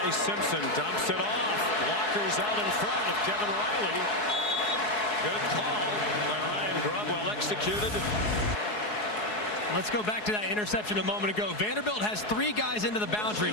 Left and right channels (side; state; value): right; late; 4.8 ms